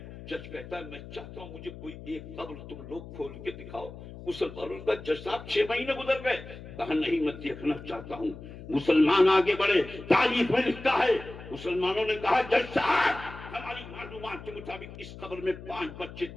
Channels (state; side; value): noise; left; hum, 14 dB below the sound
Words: جج کہتا ہے میں چاہتا ہوں مجھے کوئی ایک قبر تم لوگ کھول کے دکھاؤ. مسلمانوں کا جج صاحب 6 مہینے گزر گئے. کہا نہیں میں دیکھنا چاہتا ہوں. مسلمان آگے بڑھے، تاریخ میں لکھتا ہے مسلمانوں نے کہا جج صاحب ہماری معلومات کے مطابق اس قبر میں 5 بچے